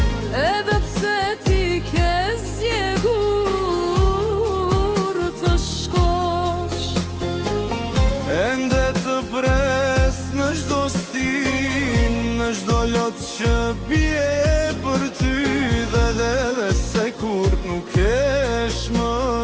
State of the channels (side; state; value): both; identical; correlation 1.00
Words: Në çdo lot që bie për ty dhe se kur nuk kesh më,